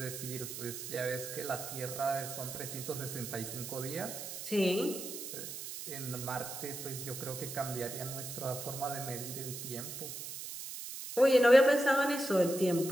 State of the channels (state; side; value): noise; right; hiss, 8 dB below the sound